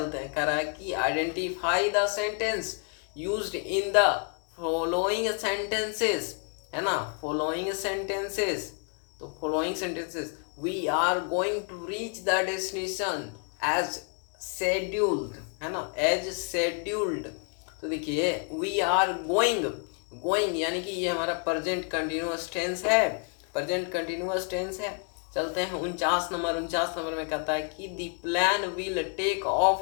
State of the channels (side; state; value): right; quieter; 39.3 dB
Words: हैं। कह रहा है कि identify the sentence used in the following sentences, है ना, फॉलोइंग सेंटेंसेस। तो following sentences, we are going to reach the destination as scheduled, है ना, एज शेड्यूल्ड। तो देखिए वी आर गोइंग, गोइंग यानी कि ये हमारा प्रेजेंट कंटिन्यूअस टेंस है, प्रेजेंट कंटिन्यूअस टेंस है। चलते हैं 49 नंबर। 49 नंबर में कहता है कि the plan will take